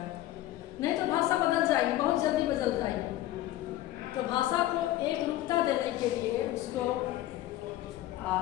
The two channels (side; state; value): right; quieter; 14.8 dB